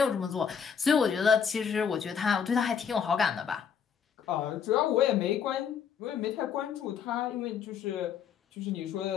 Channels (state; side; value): quieter; right; 7.2 dB